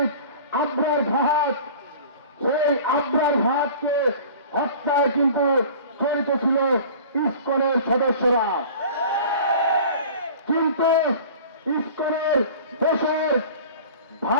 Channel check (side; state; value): both; inverted; correlation -0.42